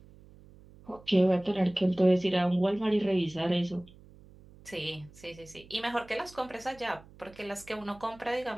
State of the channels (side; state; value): right; noise; hum, 23 dB below the sound